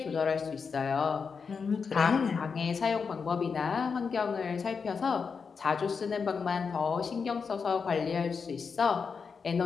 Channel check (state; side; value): quieter; right; 5.6 dB